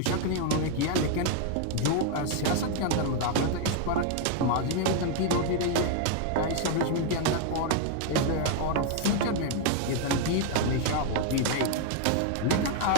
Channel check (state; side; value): different; both; correlation 0.00